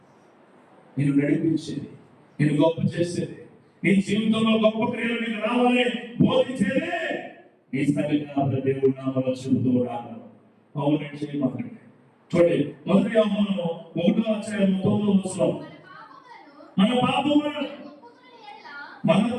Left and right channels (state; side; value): identical; both; correlation 1.00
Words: నేను నడిపించేది, నేను గొప్ప చేసేది, నీ జీవితంలో గొప్ప క్రియలు నీకు రావాలి బోధించేది ఈ సంఘ దేవుడు నామలో చెబుతూ ఉన్నాను. అవునండి, చేయమాకండి. చూడండి, 1 యోహాను 1:9 మన పాపములను